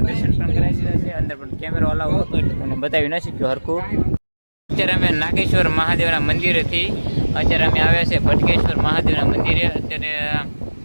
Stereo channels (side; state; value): both; inverted; correlation -1.00